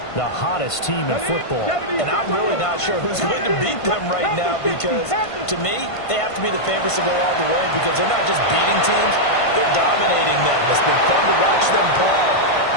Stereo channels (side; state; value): right; late; 1.5 ms